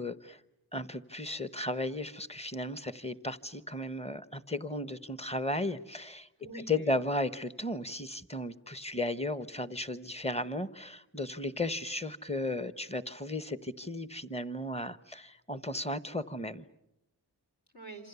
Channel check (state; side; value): normal; both; correlation 0.35